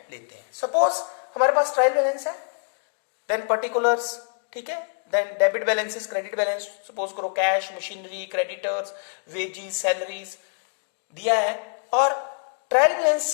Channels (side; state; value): right; silent; digital silence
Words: लेते हैं। सपोज हमारे पास ट्रायल बैलेंस है, देन पर्टिकुलर्स, ठीक है, then debit balances, credit balance, suppose करो cash, machinery, creditors, wages, salaries दिया है, और ट्रायल